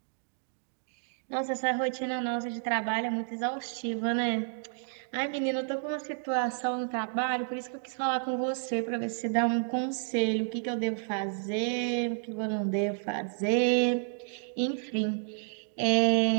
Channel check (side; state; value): left; silent; digital silence